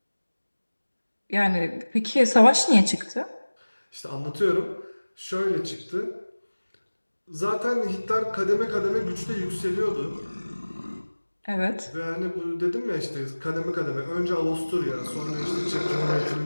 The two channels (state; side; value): inverted; both; correlation -1.00